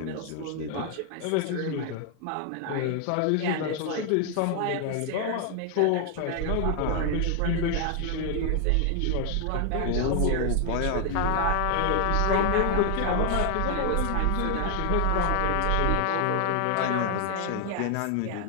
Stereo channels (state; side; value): different; both; correlation 0.00